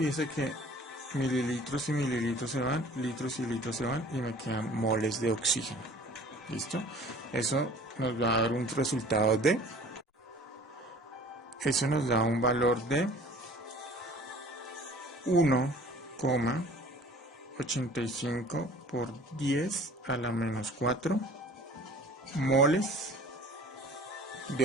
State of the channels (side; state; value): both; normal; correlation 0.48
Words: que mililitros y mililitros se van, litros y litros se van y me quedan moles de oxígeno. ¿Listo? Eso nos va a dar un resultado de... Eso nos da un valor de 1,85 por 10 a la menos 4 moles